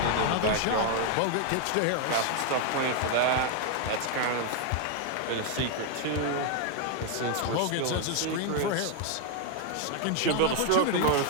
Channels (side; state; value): both; different; correlation 0.00